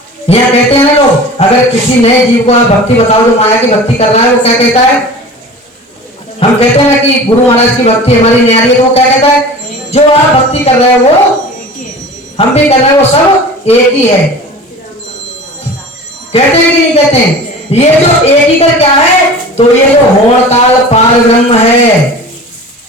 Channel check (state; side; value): normal; both; correlation 0.38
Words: यहाँ कहते हैं ना लोग, अगर किसी नए जीव को आप भक्ति बताओ जो माया की भक्ति कर रहा है, वो क्या कहता है, हम कहते हैं ना कि गुरु महाराज की भक्ति हमारी न्यारी है, तो वो क्या कहता है, जो आप भक्ति कर रहे हैं वो हम भी कर रहे हैं, वो सब एक ही है। कहते हैं कि नहीं कहते हैं, ये जो एक ही कर क्या है, तो ये जो होड़ ताल पार ब्रह्म है,